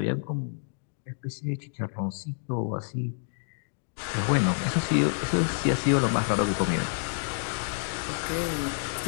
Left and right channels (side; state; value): right; silent; digital silence